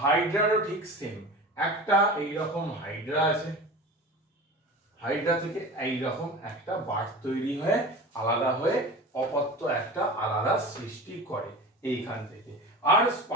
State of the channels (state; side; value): normal; both; correlation 0.34